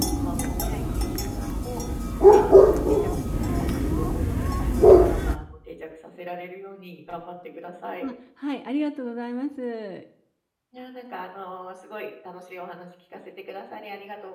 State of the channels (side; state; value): both; identical; correlation 1.00